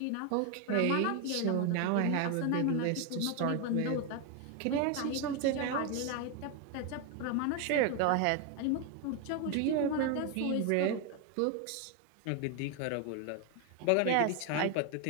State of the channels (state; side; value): different; both; correlation 0.01